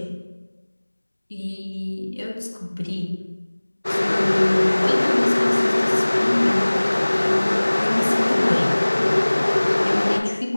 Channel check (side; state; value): both; inverted; correlation -1.00